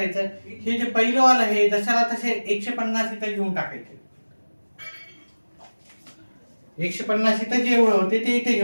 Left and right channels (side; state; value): both; inverted; correlation -1.00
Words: हे जे पहिलं वाला आहे जशाला तसे 150 इथं घेऊन टाकायचे. 150 इथं जे होते ते इथे